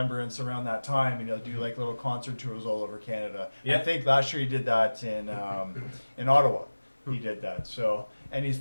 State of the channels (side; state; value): both; inverted; correlation -1.00